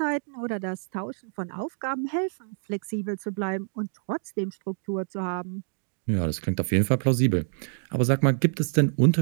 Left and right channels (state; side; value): silent; left; digital silence